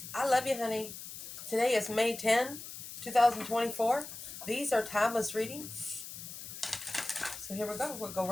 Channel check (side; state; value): left; noise; hiss, 11 dB below the sound